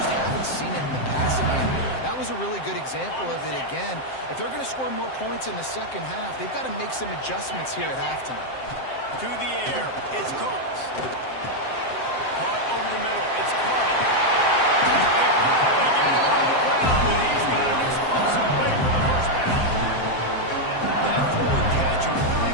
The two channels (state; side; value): late; right; 7.7 ms